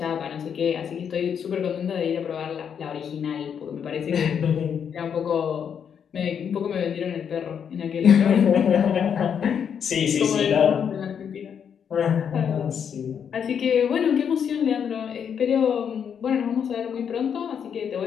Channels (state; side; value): quieter; right; 7.7 dB